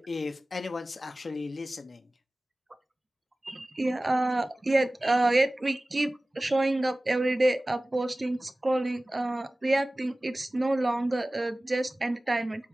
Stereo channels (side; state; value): both; normal; correlation 0.98